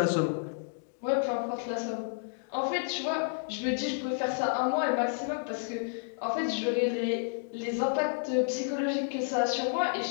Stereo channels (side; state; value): right; silent; digital silence